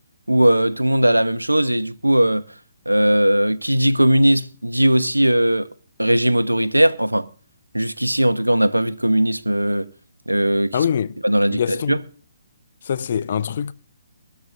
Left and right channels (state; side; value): inverted; both; correlation -0.97